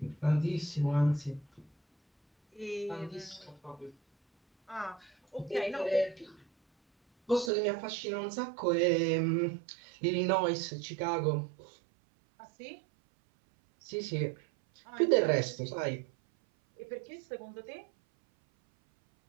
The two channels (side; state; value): left; drops out; at 7.5 s